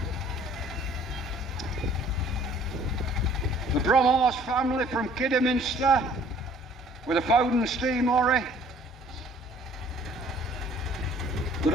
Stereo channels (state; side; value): normal; both; correlation 0.56